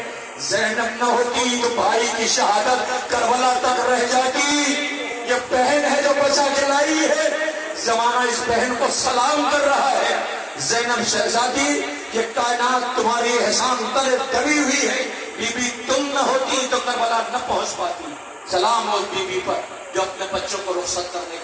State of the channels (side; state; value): both; identical; correlation 1.00